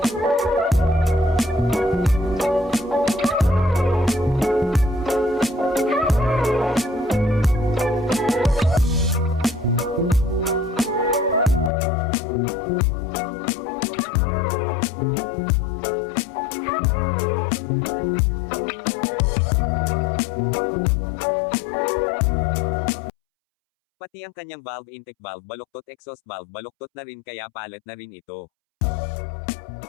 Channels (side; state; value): right; drops out; at 11.7 s